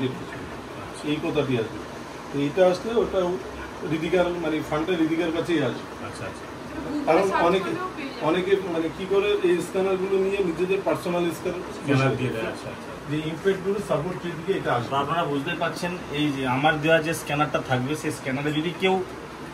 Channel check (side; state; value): both; identical; correlation 1.00